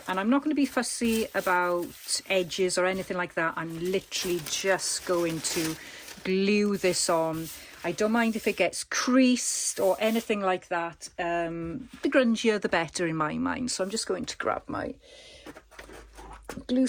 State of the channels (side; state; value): both; identical; correlation 1.00